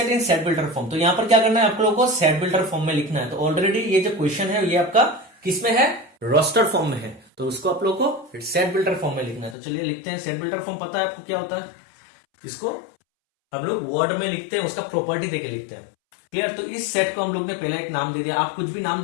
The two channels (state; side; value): drops out; right; at 9.6 s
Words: in set builder form. तो यहां पर क्या करना है आप लोगों को, सेट बिल्डर फॉर्म में लिखना है। तो ऑलरेडी ये जो क्वेश्चन है ये आपका किसमें है, रोस्टर फॉर्म में है, तो उसको आप लोग को सेट बिल्डर फॉर्म में लिखना है। तो चलिए लिखते हैं। सेट बिल्डर फॉर्म पता है आपको क्या होता है, इसको हम लोग वर्ड में लिखते हैं, उसका प्रॉपर्टी देके लिखते हैं। क्लियर। तो इस सेट को हम लोग ने पहले एक नाम दे दिया, आप कुछ भी नाम